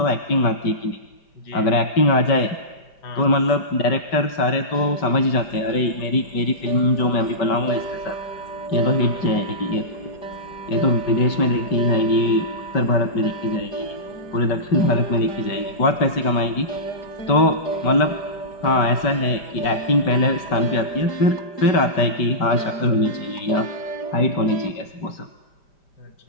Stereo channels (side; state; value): right; late; 5.3 ms